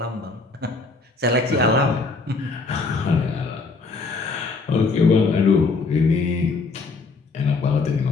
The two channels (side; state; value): right; quieter; 4.1 dB